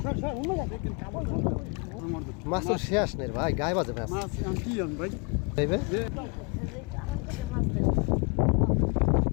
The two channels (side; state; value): right; quieter; 31.3 dB